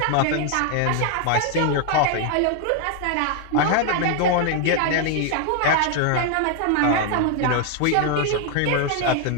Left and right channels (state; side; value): different; both; correlation 0.00